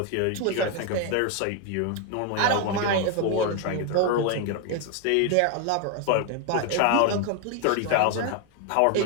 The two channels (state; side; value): different; both; correlation 0.01